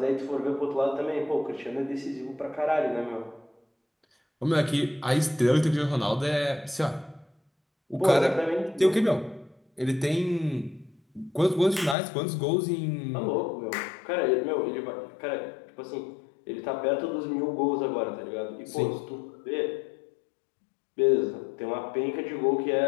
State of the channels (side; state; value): right; drops out; at 12.0 s